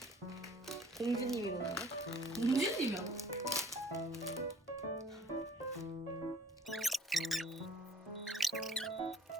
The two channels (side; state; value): both; normal; correlation 0.50